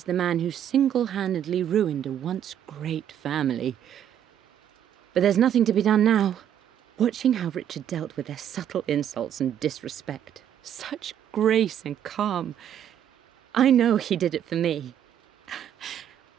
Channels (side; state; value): left; quieter; 9.9 dB